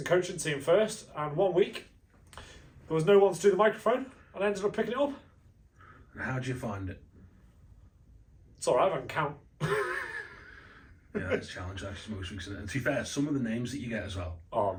coaching team first, and 1 week there was no one to do the microphone, and I ended up picking it up. And how did you find it? It's alright, I can count. Yeah, it's a challenge actually most weeks. And to be fair, some of the names that you get as well. Oh,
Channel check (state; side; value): identical; both; correlation 1.00